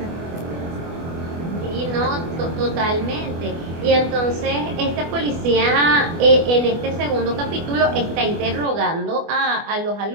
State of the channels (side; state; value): left; late; 24 ms